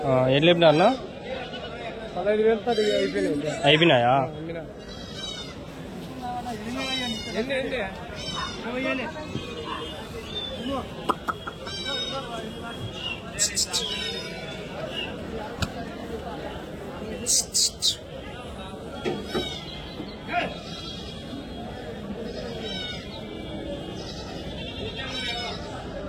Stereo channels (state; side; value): identical; both; correlation 1.00